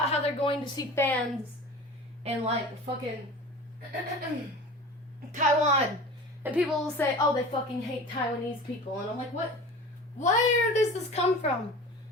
how they're going to see fans in, like, fucking Taiwan. And people will say, oh, they fucking hate Taiwanese people. And I'm like, what? Where does this come from?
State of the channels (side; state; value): both; normal; correlation 0.37